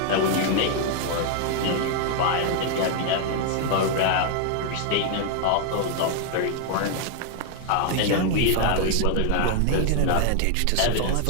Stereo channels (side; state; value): both; different; correlation 0.00